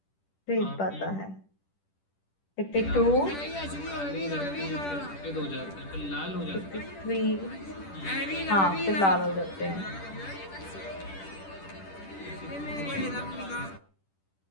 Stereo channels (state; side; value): late; right; 10 ms